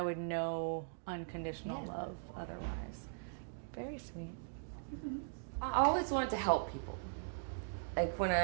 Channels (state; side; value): silent; left; digital silence